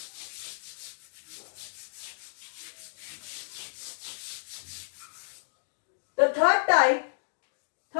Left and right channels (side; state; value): right; silent; digital silence